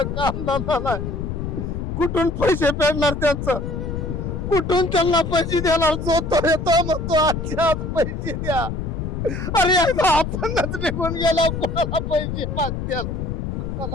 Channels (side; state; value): left; noise; rumble, 4 dB below the sound